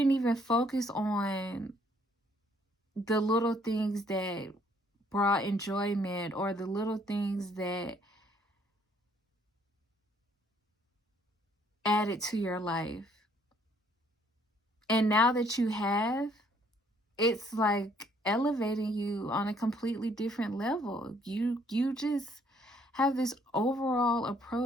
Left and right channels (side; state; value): both; normal; correlation 0.65